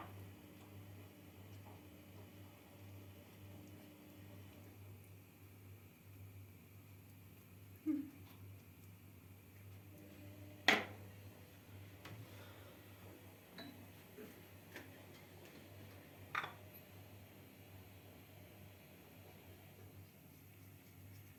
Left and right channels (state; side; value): identical; both; correlation 1.00